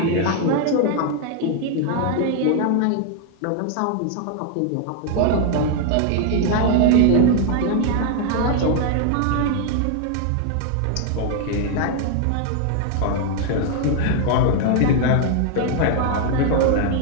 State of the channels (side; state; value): both; different; correlation 0.00